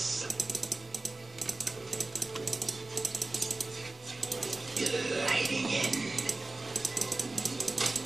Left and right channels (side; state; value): left; quieter; 3.2 dB